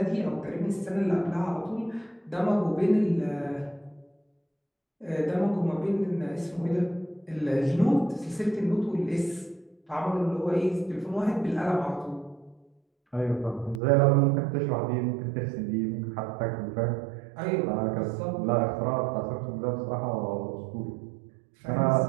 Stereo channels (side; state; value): left; drops out; at 13.8 s